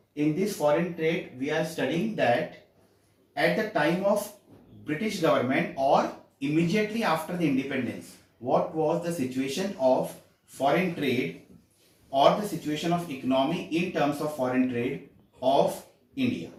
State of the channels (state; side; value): identical; both; correlation 1.00